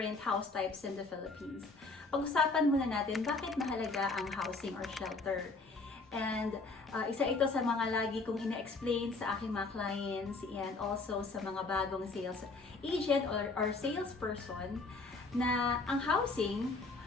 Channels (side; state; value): right; quieter; 3.6 dB